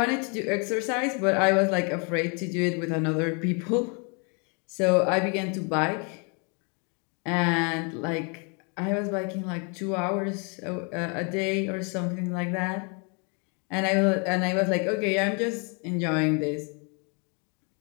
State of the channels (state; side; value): quieter; right; 35.4 dB